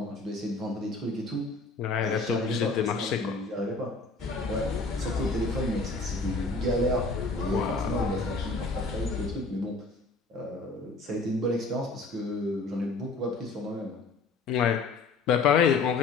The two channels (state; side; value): quieter; right; 3.7 dB